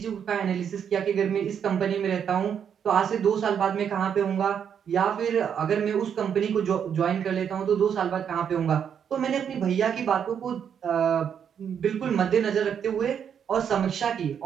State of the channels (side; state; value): left; quieter; 8.0 dB